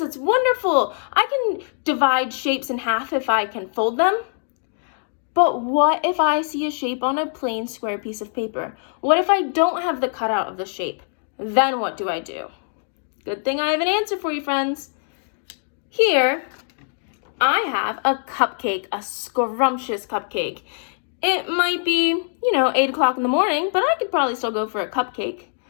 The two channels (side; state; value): right; silent; digital silence